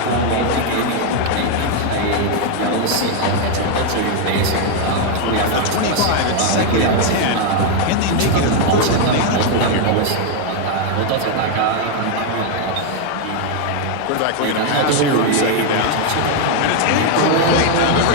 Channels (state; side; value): different; both; correlation 0.00